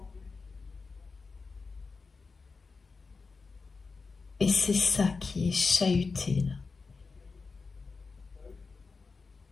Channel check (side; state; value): right; quieter; 4.5 dB